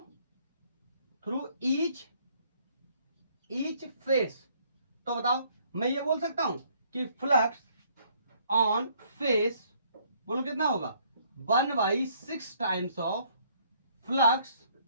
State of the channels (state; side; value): inverted; both; correlation -0.64